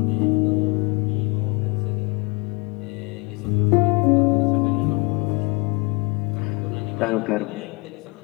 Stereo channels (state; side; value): quieter; right; 27.8 dB